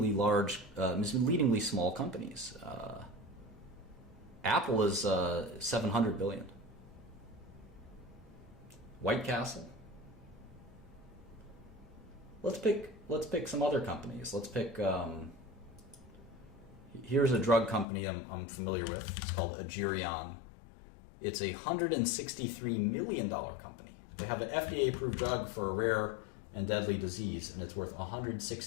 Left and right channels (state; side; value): drops out; right; at 17.9 s